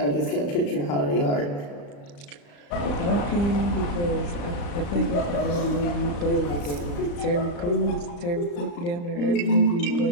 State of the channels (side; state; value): right; late; 35 ms